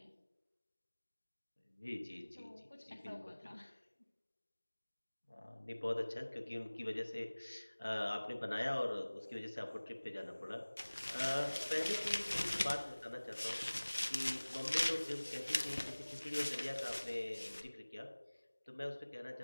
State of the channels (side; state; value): both; inverted; correlation -1.00